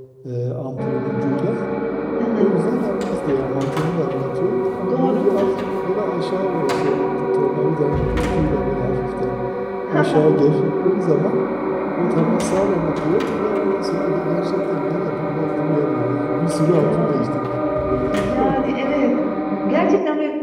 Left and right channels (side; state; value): both; identical; correlation 1.00